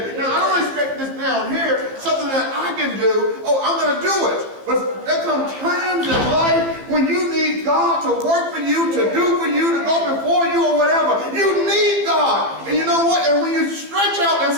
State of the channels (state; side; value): late; left; 15 ms